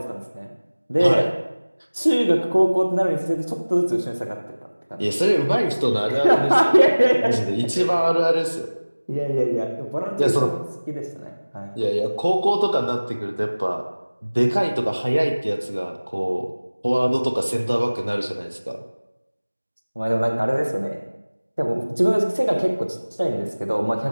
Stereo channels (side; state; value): both; inverted; correlation -1.00